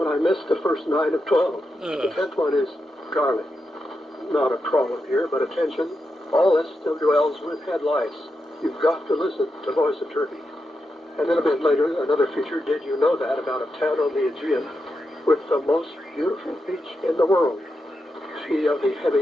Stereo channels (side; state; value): both; normal; correlation 0.87